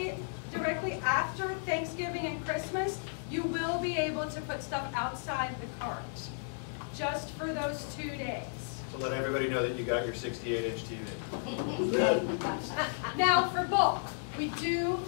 directly after Thanksgiving and Christmas, you will be able to put stuff outside the cart. Just for those 2 days. to let everybody know that you got your 68-inch TV. Now for bulk,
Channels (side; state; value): right; silent; digital silence